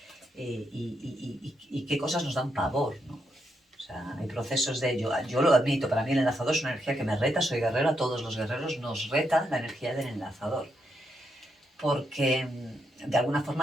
y qué cosas nos dan pavor, ¿no? O sea, hay procesos de yo lo admito, para mí el enlazador es una energía que me reta, soy guerrero, a todos los guerreros nos reta la energía del enlazador, porque de alguna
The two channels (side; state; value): both; normal; correlation 0.81